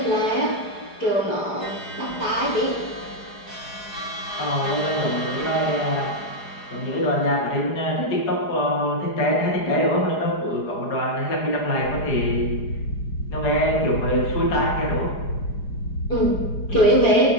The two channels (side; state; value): right; late; 4.9 ms